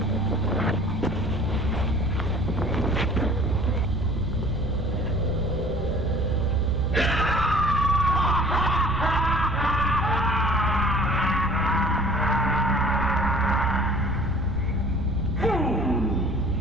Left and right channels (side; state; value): right; noise; rumble, 6 dB below the sound